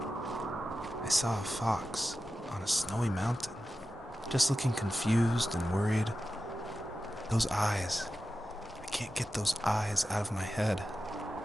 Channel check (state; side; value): normal; both; correlation 0.93